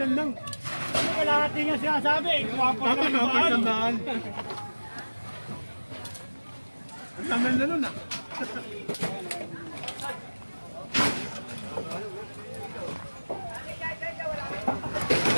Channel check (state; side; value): inverted; both; correlation -1.00